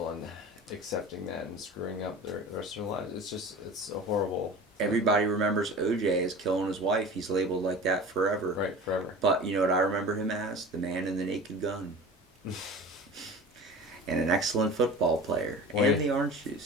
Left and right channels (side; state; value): both; normal; correlation 0.37